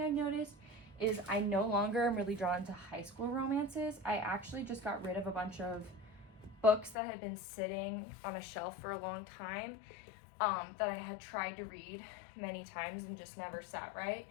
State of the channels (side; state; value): right; drops out; at 7.0 s